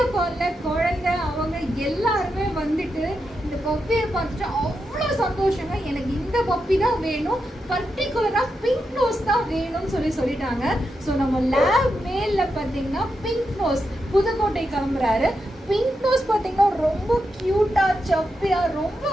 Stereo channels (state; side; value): normal; both; correlation 0.86